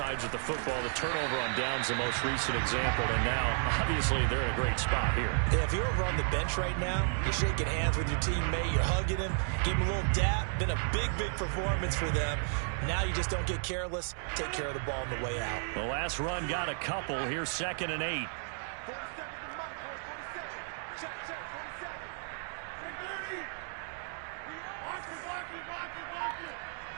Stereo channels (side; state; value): left; silent; 56 dB below the other